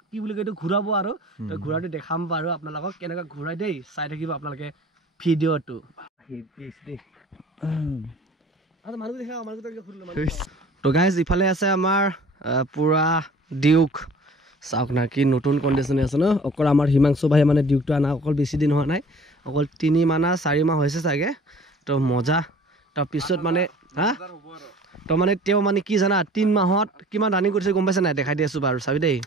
কি বুলি কয় এইটো ঘূৰাব আৰু তো ঘূৰাটো দেখাম বাৰু আপোনালোকক কেনেকৈ ঘূৰাই দেই চাই থাকিব আপোনালোকে ভিডিঅ'টো তো গাইজ ইফালে আছে আমাৰ পুৰা ডিউক চাওক না কি নতুন কণ্ডিশ্যনে আছে ন অকল আমাৰ হিমাংশু ভাই মানে ডিউকটো আনা অকল বেছি দিন হোৱা নাই অকল 3 মাহ না 4 মাহ হৈছে চাগে তো মজা তাৰপিছত মানে তো মানে তেওঁ মানে কি জানা 3 মাহত কিমান ৰানিং কৰিছে গম পাইছে নাই দেখাই দি আছোঁ বাৰু চাবি দেই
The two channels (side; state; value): both; normal; correlation 0.48